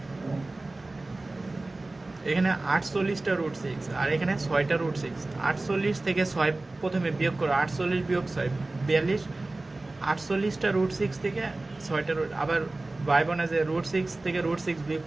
এখানে 48টা রুট সিক্স আর এখানে ছয়টা রুট সিক্স। 48 থেকে ছয় প্রথমে বিয়োগ করো, 48 বিয়োগ ছয় 42। 48টা রুট সিক্স থেকে ছয়টা রুট, আবার ভাইব না যে রুট সিক্স থেকে রুট সিক্স বিয়োগ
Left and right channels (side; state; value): left; quieter; 3.0 dB